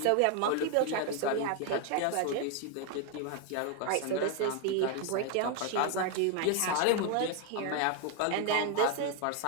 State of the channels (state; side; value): different; both; correlation 0.01